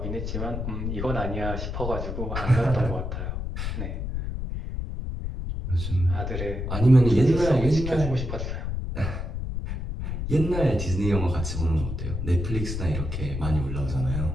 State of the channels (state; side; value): noise; left; rumble, 4 dB below the sound